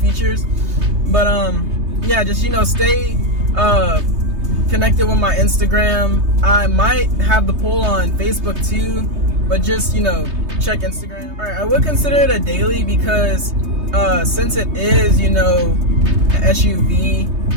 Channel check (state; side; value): late; left; 3.2 ms